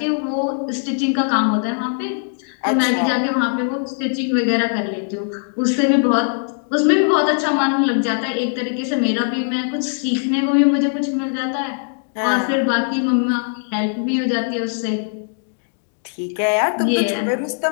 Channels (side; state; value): right; silent; 66 dB below the other